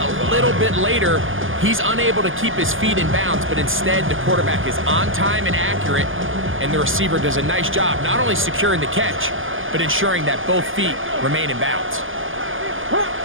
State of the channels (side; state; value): left; late; 0.58 ms